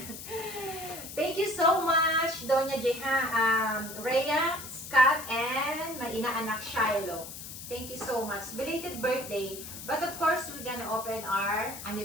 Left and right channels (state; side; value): noise; left; hiss, 11 dB below the sound